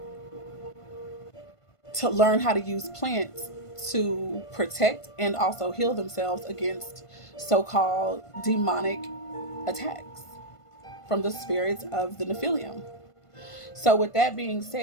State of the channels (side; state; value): right; late; 1.5 ms